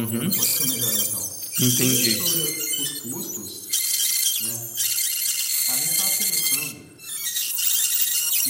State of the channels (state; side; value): identical; both; correlation 1.00